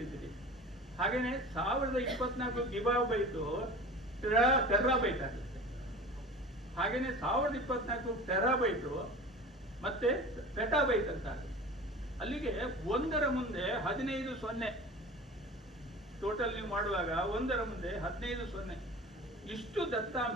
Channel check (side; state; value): both; normal; correlation 0.37